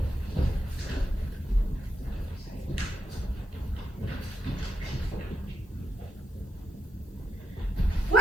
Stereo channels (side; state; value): both; normal; correlation 0.83